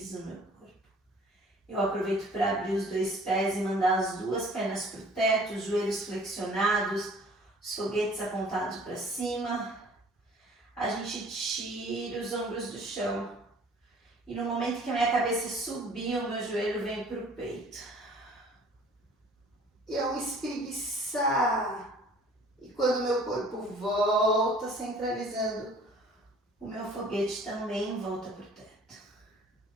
o meu corpo. Eu aproveito para abrir os dois pés e mandar as duas pernas para o teto, os joelhos flexionados, os foguetes apontados para cima. A gente tira os ombros do chão. E no momento que a minha cabeça subir, o meu joelho vem para o peito. E eu espreguiçar. E quando o meu corpo volta, centralizando, o meu foguete também volta para o teto.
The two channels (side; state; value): both; normal; correlation 0.52